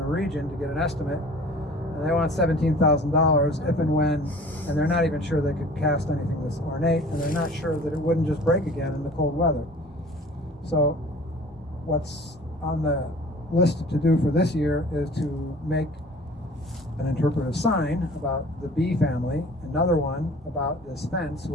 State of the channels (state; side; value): normal; both; correlation 0.46